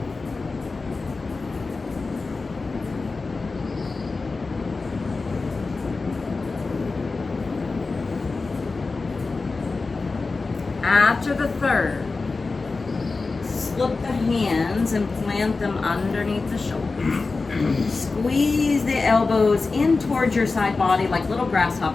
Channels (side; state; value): right; quieter; 3.9 dB